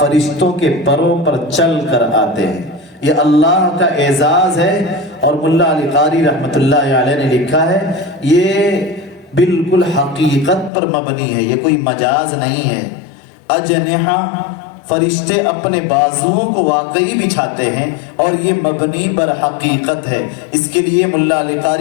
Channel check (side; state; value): right; drops out; at 10.7 s